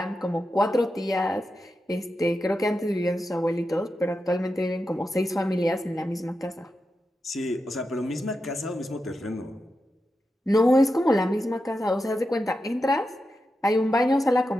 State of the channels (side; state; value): both; normal; correlation 0.89